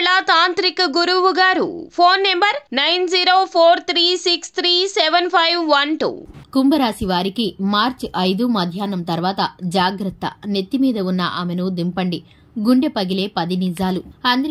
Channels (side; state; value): both; identical; correlation 1.00